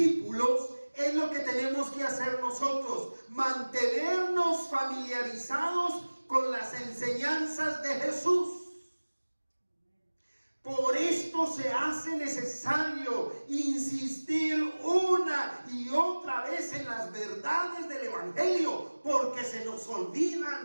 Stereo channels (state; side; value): inverted; both; correlation -1.00